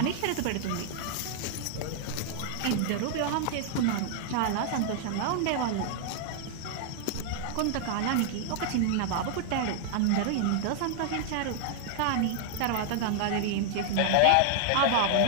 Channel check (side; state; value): both; different; correlation 0.00